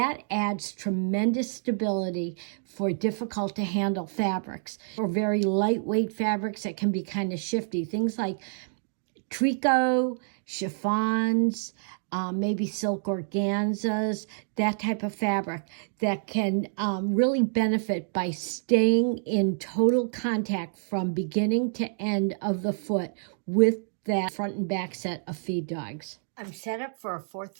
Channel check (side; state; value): left; silent; digital silence